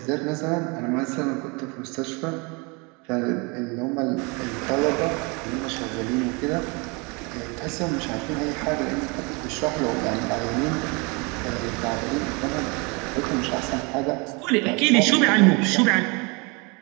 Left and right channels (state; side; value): quieter; left; 29.5 dB